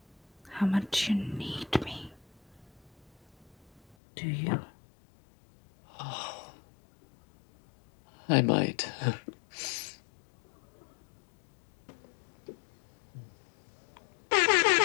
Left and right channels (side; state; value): right; drops out; at 4.0 s